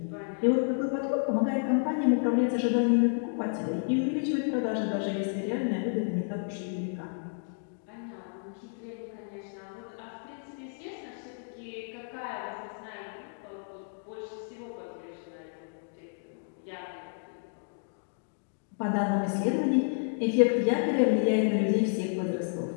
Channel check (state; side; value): silent; right; digital silence